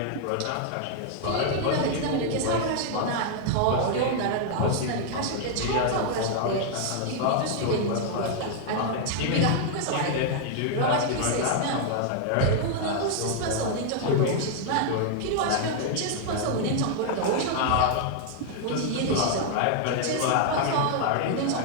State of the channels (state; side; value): different; both; correlation 0.00